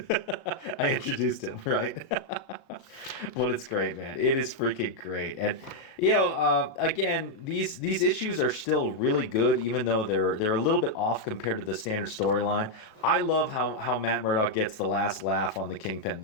I introduced him, right? But it's great, man. It is freaking great. And, again, these issues are still really good, even though they're a little bit off compared to the standard storyline. I love how Matt Murdock gets the last laugh on the Kingpin,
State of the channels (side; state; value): right; late; 37 ms